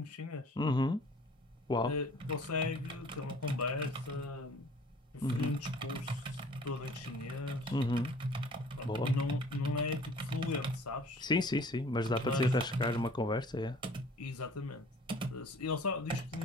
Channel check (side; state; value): both; normal; correlation 0.51